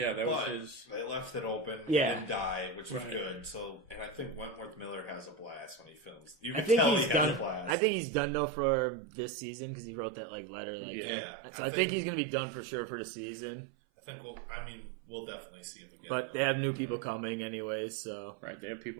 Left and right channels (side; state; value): left; drops out; at 7.8 s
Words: that was But his. they left it open. Yeah. He didn't die, which was Right. good. So, and I think Wentworth Miller has a blast when he films. You I can think tell he's he done. has a blast. I think he's done though for this season because he wrote that like letter. Like, Yeah. So I think he's gonna be done for sure for the season. I think we'll definitely see him again. But they have new people coming anyways, so Right, they have